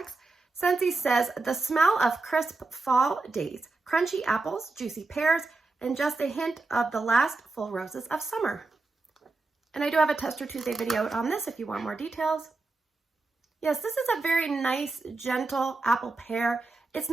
Scentsy says, the smell of crisp fall days, crunchy apples, juicy pears, and just a hint of the last full roses of summer. And I do have a Tester Tuesday video on this if you want more details. Yes, this is a very nice, gentle apple pear. It's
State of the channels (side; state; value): left; quieter; 3.5 dB